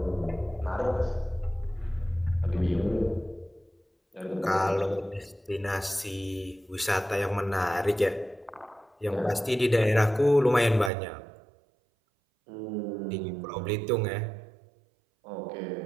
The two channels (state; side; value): drops out; left; at 10.9 s